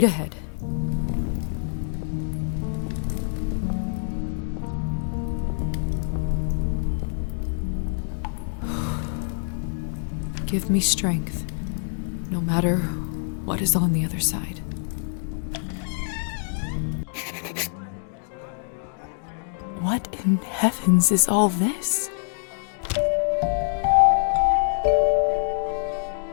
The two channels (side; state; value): right; silent; digital silence